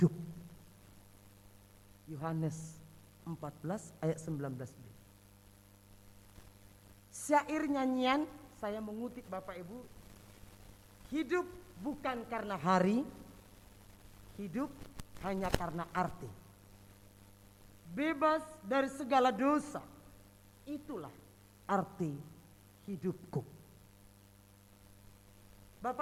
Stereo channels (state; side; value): identical; both; correlation 1.00